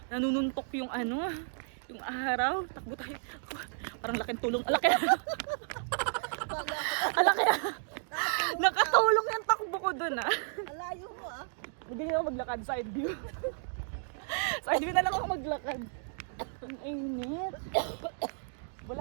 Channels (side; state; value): left; silent; digital silence